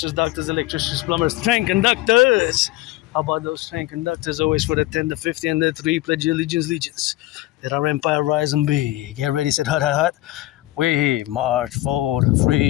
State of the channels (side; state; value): right; quieter; 17.4 dB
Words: doctors, electricians, plumbers, train conductors. How about those train conductors? Always for the 10, the 50, and the 3. Pledge your allegiance, legions. Let our empire rise and be. Get ready, set hut, hut, hut. We march for the